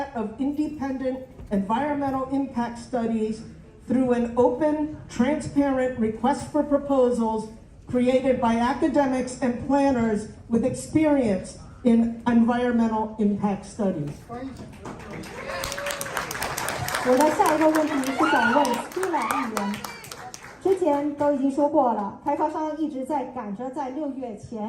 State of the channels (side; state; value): both; identical; correlation 1.00